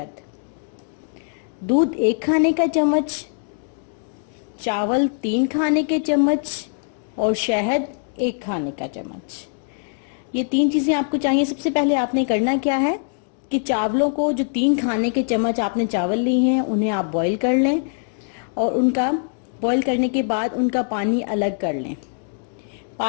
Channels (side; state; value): right; silent; digital silence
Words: दूध 1 खाने का चम्मच, चावल 3 खाने के चम्मच और शहद 1 खाने का चम्मच। ये 3 चीजें आपको चाहिए। सबसे पहले आपने करना क्या है कि चावलों को, जो 3 खाने के चम्मच आपने चावल लिए हैं, उन्हें आप बॉईल कर लें और उनका बॉईल करने के बाद उनका पानी अलग कर लें।